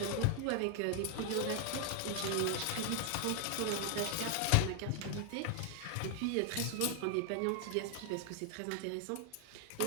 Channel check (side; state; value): both; different; correlation 0.00